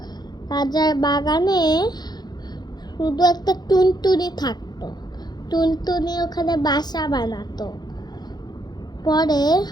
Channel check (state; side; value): late; right; 0.20 ms